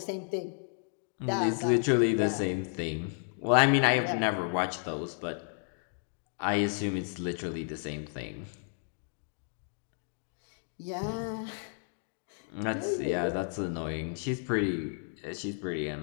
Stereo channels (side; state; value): right; silent; 56 dB below the other